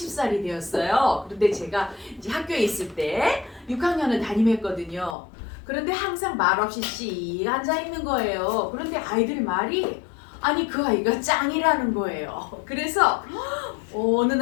되었어요. 그런데 제가 이제 학교에 있을 때 6학년을 담임했거든요. 그런데 항상 말없이 씩 앉아 있는 거예요. 그런데 아이들 말이 아니 그 아이가 짱이라는 거예요. 그래서 어느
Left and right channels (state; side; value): drops out; right; at 5.2 s